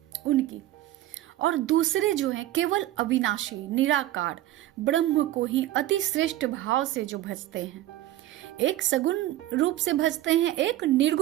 उनकी। और दूसरे जो हैं केवल अविनाशी निराकार ब्रह्म को ही अति श्रेष्ठ भाव से जो भजते हैं, एक सगुण रूप से भजते हैं, एक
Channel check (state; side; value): quieter; left; 14.7 dB